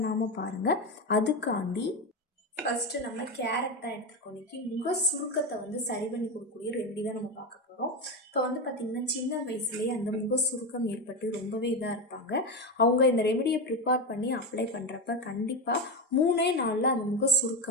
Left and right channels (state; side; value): normal; both; correlation 0.14